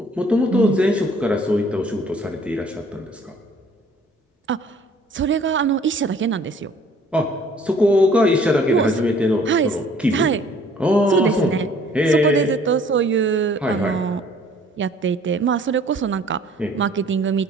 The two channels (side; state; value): both; normal; correlation 0.56